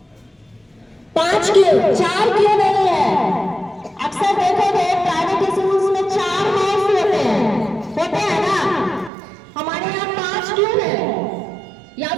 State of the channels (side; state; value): left; drops out; at 9.1 s